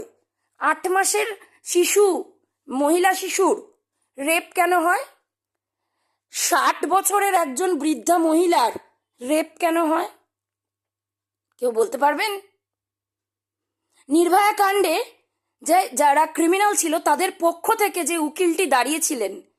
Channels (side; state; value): both; identical; correlation 1.00